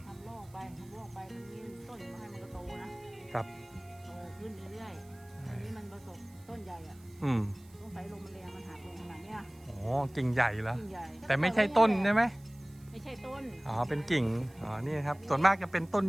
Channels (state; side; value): noise; right; hiss, 27 dB below the sound